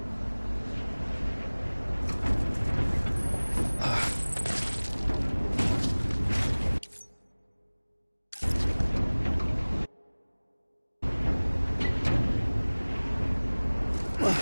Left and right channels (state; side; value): inverted; both; correlation -1.00